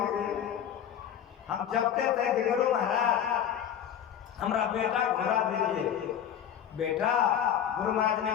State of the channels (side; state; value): right; quieter; 9.5 dB